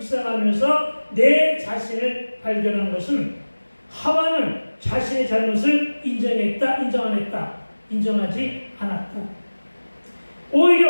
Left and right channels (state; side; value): inverted; both; correlation -1.00